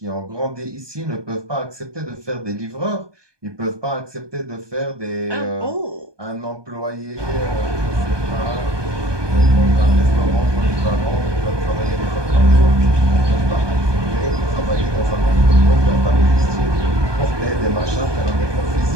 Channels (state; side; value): late; left; 1.2 ms